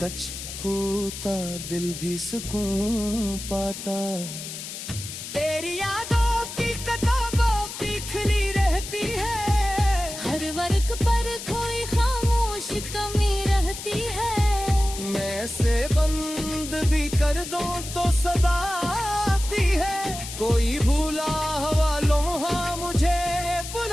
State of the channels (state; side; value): noise; left; hiss, 9 dB below the sound